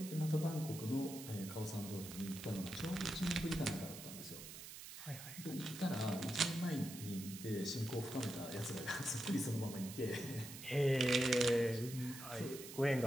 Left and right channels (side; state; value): right; noise; hiss, 12 dB below the sound